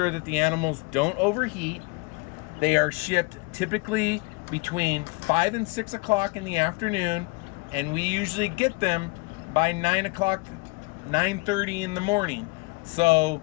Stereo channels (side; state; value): right; quieter; 26.9 dB